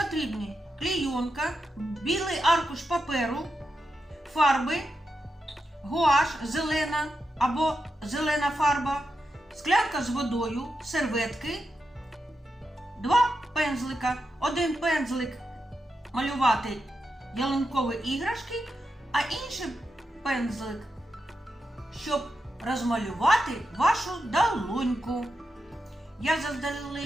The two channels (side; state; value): both; normal; correlation 0.87